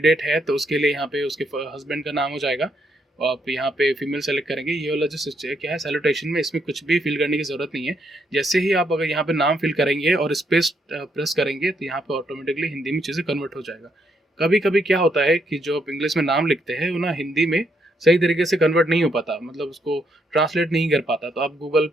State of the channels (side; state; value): both; normal; correlation 0.76